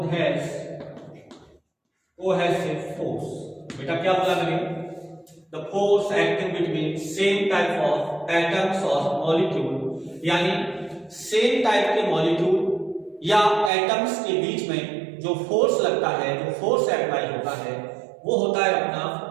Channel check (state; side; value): drops out; left; at 13.7 s